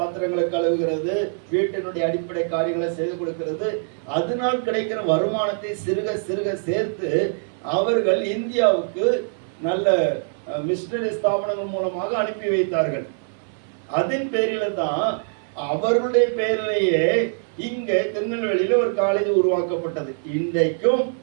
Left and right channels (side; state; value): left; silent; 63 dB below the other